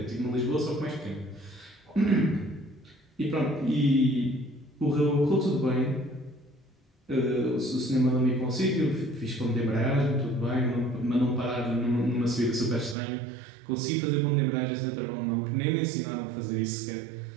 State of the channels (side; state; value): left; drops out; at 13.0 s